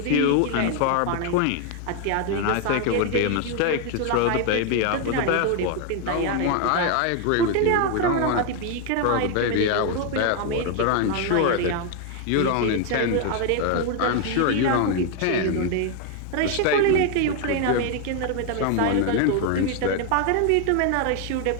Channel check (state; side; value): different; both; correlation 0.01